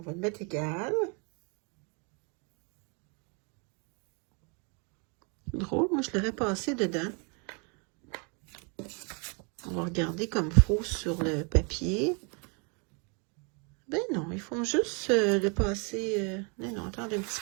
va le mettre égal. Drôle, moi je l'aurais passé dedans. On va regarder comme faux sur le papier. Ben non, ils font juste le passer. Non, attendez un petit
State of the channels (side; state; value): left; quieter; 34.9 dB